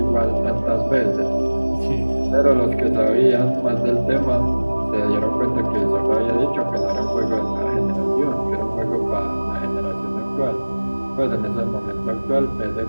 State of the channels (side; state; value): both; inverted; correlation -1.00